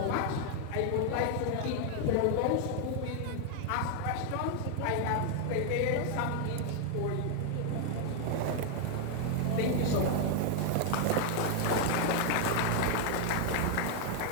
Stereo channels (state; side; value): different; both; correlation 0.00